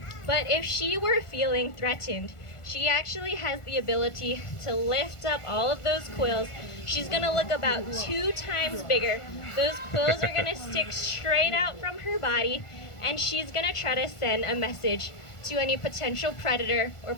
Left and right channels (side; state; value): right; late; 1.4 ms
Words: But if she were feeling threatened, she actually has the ability to lift up all of those quills. She's gonna look about 2 times bigger. Those quills are gonna stick straight out from her body, and she's gonna try to send a message to any potential predator or